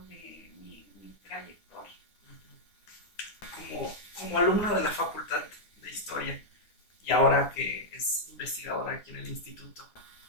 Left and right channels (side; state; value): right; late; 9.6 ms